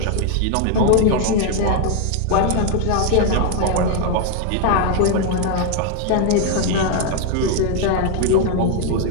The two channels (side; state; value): both; different; correlation 0.00